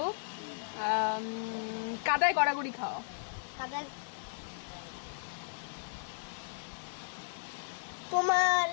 কাদায় গড়াগড়ি খাওয়া। কাদা। তোমার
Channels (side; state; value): right; silent; digital silence